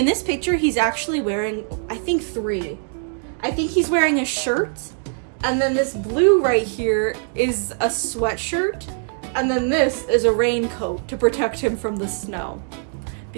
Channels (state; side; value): silent; left; 59 dB below the other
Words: this picture, he's actually wearing, I think, 3. I think he's wearing a shirt, and then this blue right here is a sweatshirt, and then this is a raincoat to protect him from the snow